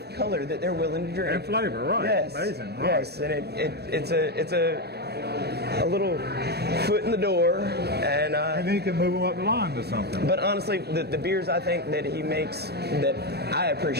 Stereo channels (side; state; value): left; late; 0.47 ms